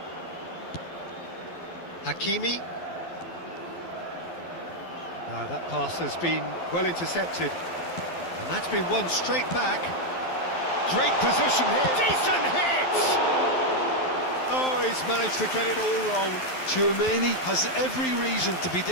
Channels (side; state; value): right; late; 12 ms